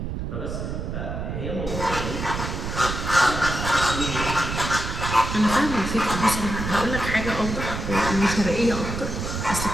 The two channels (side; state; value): right; noise; rumble, 4 dB below the sound